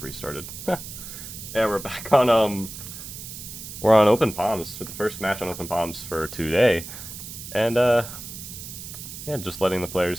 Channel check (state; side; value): noise; right; hiss, 11 dB below the sound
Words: restarted. Yeah, we're back on, we're on Open Palms for the first match on Open Palms for today. And, yeah, just letting the